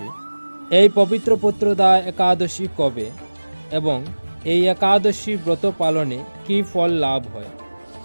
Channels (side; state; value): both; inverted; correlation -1.00